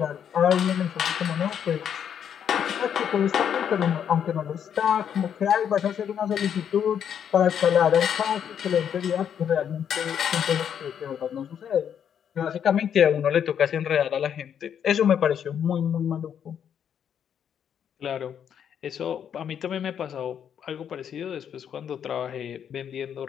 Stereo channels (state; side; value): quieter; right; 8.6 dB